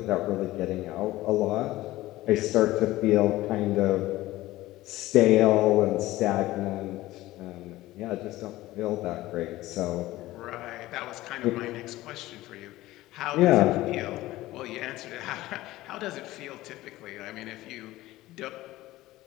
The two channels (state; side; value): quieter; right; 17.0 dB